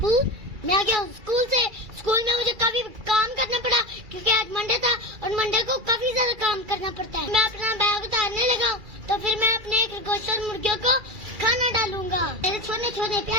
मैं आ गया हूँ स्कूल से। स्कूल में मुझे काफी काम करना पड़ा क्योंकि आज मंडे था और मंडे को काफी ज्यादा काम करना पड़ता है। मैं अपना बैग उतारने लगा हूँ तो फिर मैं अपने खरगोश और मुर्गियों को खाना डालूंगा। मेरे छोटे छोटे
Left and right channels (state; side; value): late; left; 2.3 ms